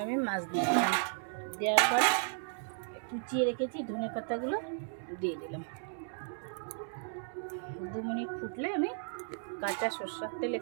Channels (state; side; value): silent; left; digital silence